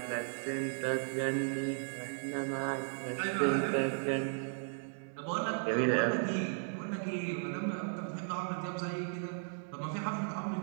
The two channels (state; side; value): silent; left; digital silence